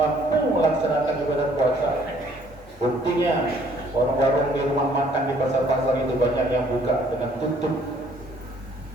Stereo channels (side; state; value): both; normal; correlation 0.61